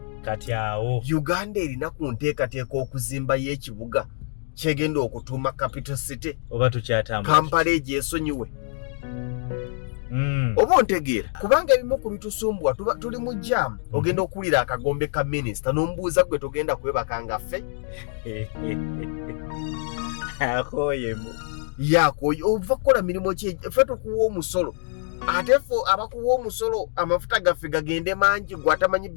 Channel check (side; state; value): right; silent; digital silence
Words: awo Uganda erina ku nteekateeka okuzimba y'ekibuga kyegenda okutuuma capital city oba tukyatambula Kampala egyesonyiwe. Oba ontegeera kubanga ebimu ku bitusumbwa tuli mu jam ogenda okuwulira akagombe ka minisita n'omubuuza gwe tugenda kwebaka nga ffe akoyemu yakoye ova kukola mirimu ki ffe tukuwa omusolo ate ffe abakuwa omusolo amafuta gaffe gagende mangi gwe atamanyi